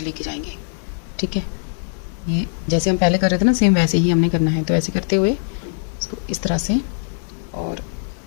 लेके जाएंगे, ठीक है। ये जैसे हम पहले कर रहे थे ना, सेम वैसे ही हमने करना है। तो ऐसे करते हुए इसको इस तरह से और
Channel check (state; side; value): silent; right; 65 dB below the other